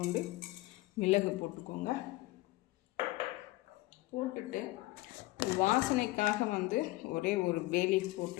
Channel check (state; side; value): quieter; right; 19.3 dB